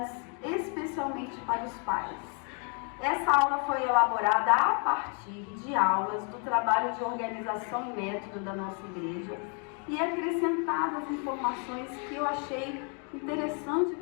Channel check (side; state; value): right; quieter; 39.3 dB